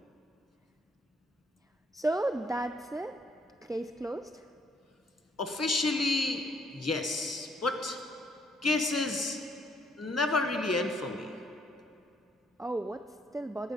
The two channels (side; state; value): both; normal; correlation 0.69